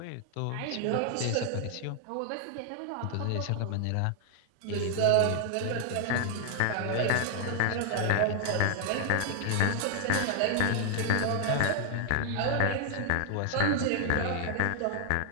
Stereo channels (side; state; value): both; different; correlation 0.00